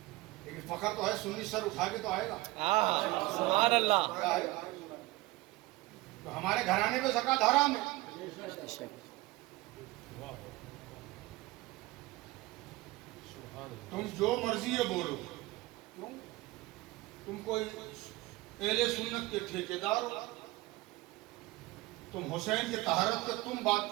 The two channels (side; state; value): left; quieter; 19.7 dB